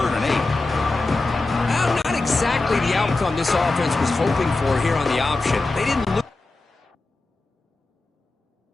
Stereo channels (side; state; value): right; quieter; 3.3 dB